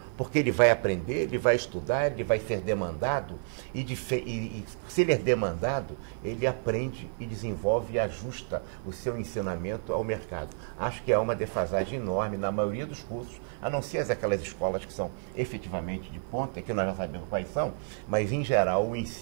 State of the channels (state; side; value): silent; left; digital silence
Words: porque ele vai aprender, ele vai estudar, ele vai ser demandado, e se ele é demandado, ele aprende e desenvolve e ajusta o seu ensinamento ao mercado. Acho que há uma defasagem enorme na maioria dos cursos, a não ser aquelas escolas que são efetivamente de ponta, que nós já sabemos quais são, mas em geral o